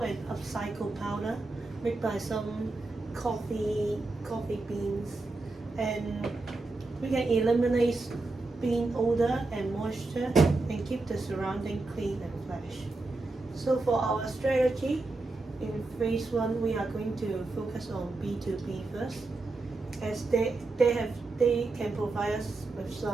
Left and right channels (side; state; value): left; quieter; 3.3 dB